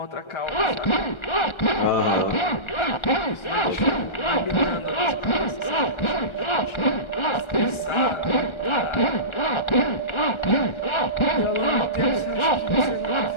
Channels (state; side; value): late; right; 1.3 ms